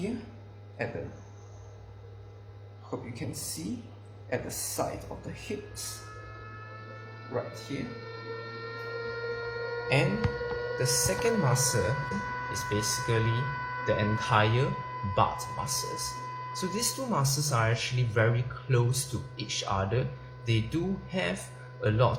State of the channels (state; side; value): identical; both; correlation 1.00